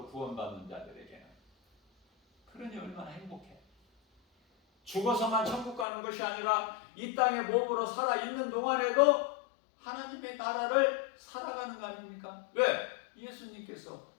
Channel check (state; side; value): drops out; right; at 5.9 s